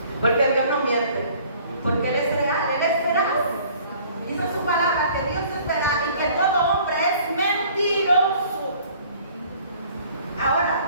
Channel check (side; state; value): both; inverted; correlation -0.54